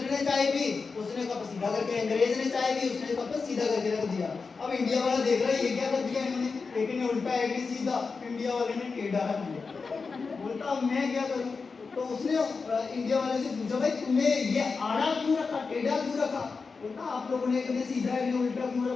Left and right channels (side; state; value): right; quieter; 4.7 dB